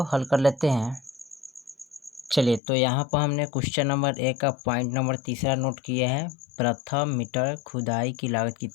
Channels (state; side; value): drops out; right; at 2.6 s